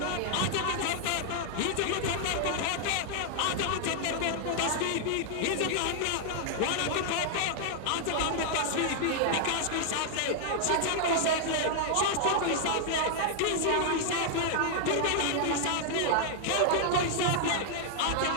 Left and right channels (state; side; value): different; both; correlation 0.00